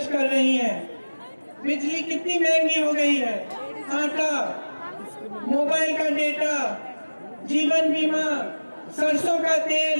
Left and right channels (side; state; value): both; inverted; correlation -1.00